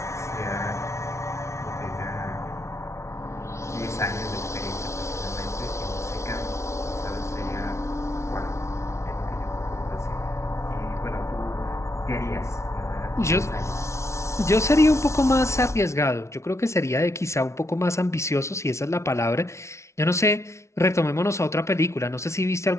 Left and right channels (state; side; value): late; right; 0.13 ms